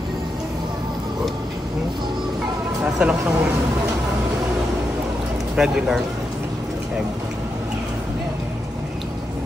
Nasa lang siyang regular egg.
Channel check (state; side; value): normal; both; correlation 0.85